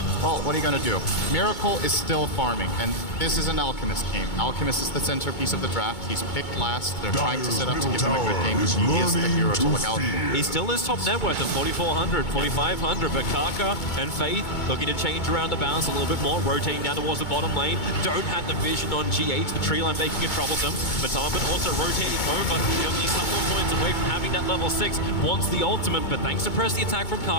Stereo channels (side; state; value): right; late; 2.2 ms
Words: well, what are you gonna do? Miracle is still farming, and this is an Alchemist game. Alchemist is the centerpiece of the draft. He's picked last. They're trying to set up to give him a good game. He is the hero to look out for. He still is top net worth of 4,400, 4,500, but Kaka and Faith looking to change around the balance a little bit more, rotating down towards the bottom lane. Don't have the vision on G8, the tree line making it troublesome. Matomaman also rotating over, he'll be a couple of points away from having that level 6, wants the ultimate, but thanks to press the attack from